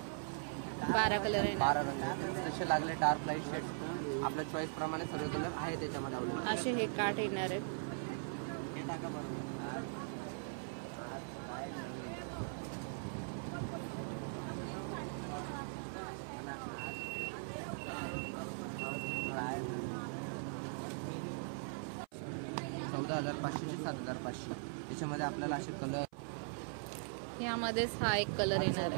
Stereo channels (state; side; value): silent; left; 51 dB below the other